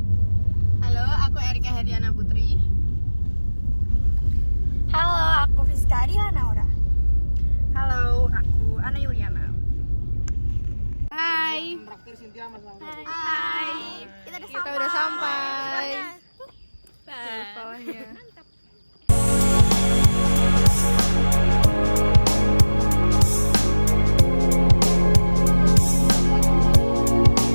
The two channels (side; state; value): both; inverted; correlation -1.00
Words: Halo, aku Erika Hediana Putri. Halo, aku Fiska Adila Naura. Halo, aku Ana Yuliana. Hai. Hai. Kita udah sampai. Bawahnya.